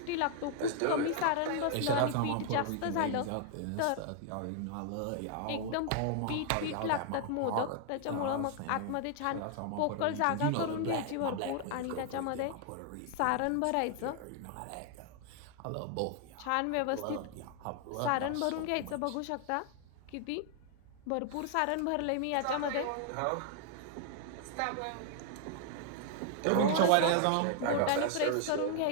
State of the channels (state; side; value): different; both; correlation 0.00